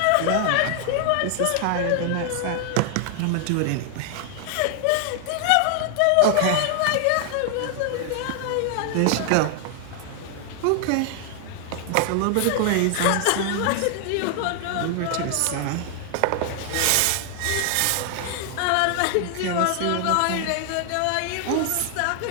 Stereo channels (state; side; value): different; both; correlation 0.00